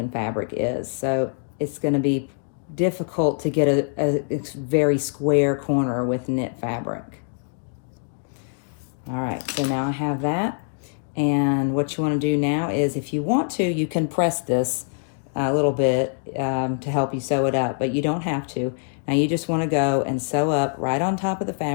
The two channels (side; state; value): right; silent; digital silence